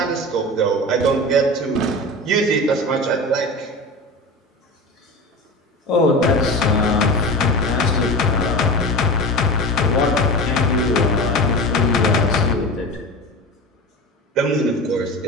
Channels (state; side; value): normal; both; correlation 0.30